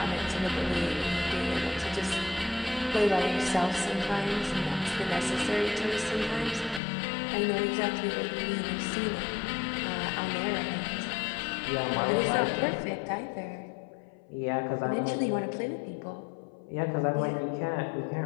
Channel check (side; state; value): right; drops out; at 6.8 s